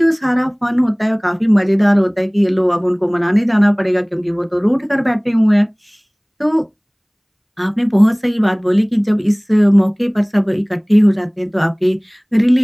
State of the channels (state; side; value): identical; both; correlation 1.00